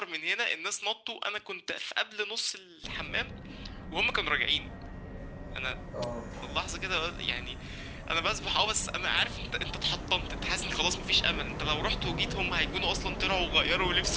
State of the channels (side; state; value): both; identical; correlation 1.00